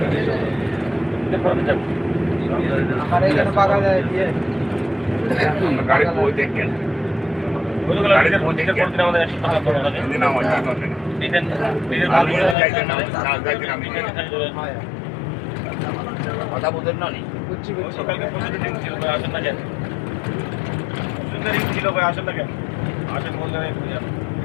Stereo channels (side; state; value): right; drops out; at 12.6 s